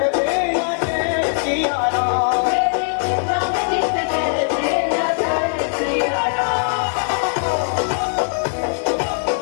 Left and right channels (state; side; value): silent; right; digital silence